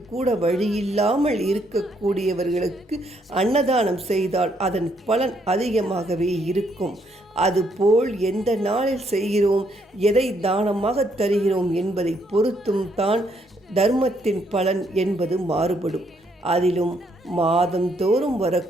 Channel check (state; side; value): normal; both; correlation 0.72